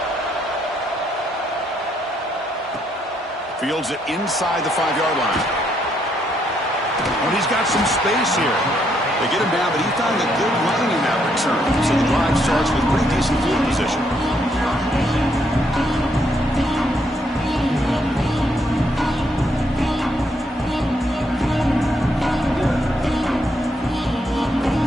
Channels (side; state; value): both; normal; correlation 0.74